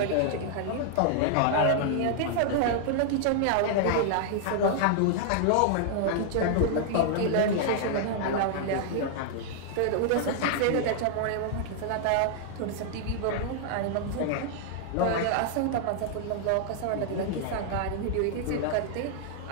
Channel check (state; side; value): different; both; correlation -0.01